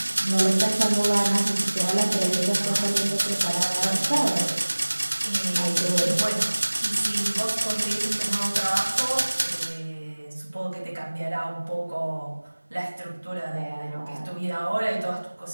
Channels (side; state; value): both; inverted; correlation -1.00